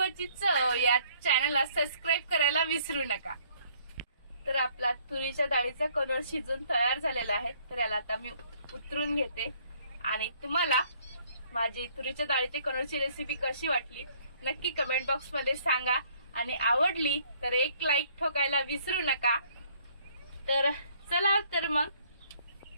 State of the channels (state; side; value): inverted; both; correlation -0.62